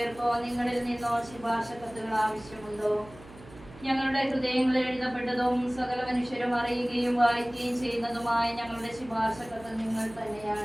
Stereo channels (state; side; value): noise; right; hum, 20 dB below the sound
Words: നിങ്ങളിൽ നിന്നോ ശുപാർശ കത്തുകൾ ആവശ്യമുണ്ടോ? ഞങ്ങളുടെ ഹൃദയങ്ങളിൽ എഴുതപ്പെട്ടതും സകല മനുഷ്യരും അറിയുകയും വായിക്കുകയും ചെയ്യുന്നതുമായ ഞങ്ങളുടെ ശുപാർശ കത്ത് നിങ്ങൾ